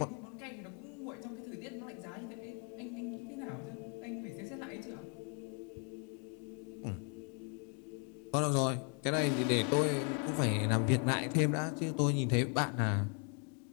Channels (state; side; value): quieter; right; 38.0 dB